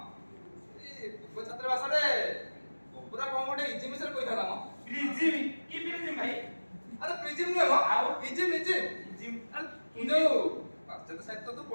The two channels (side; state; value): both; inverted; correlation -1.00